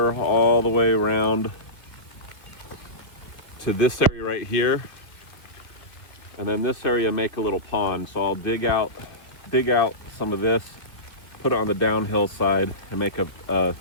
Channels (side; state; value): right; late; 2.7 ms